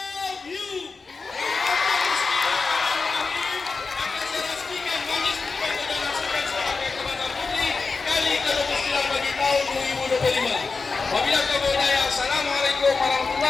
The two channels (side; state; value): right; quieter; 4.4 dB